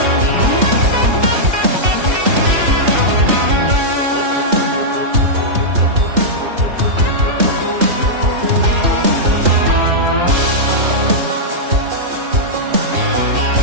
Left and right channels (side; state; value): left; late; 3.3 ms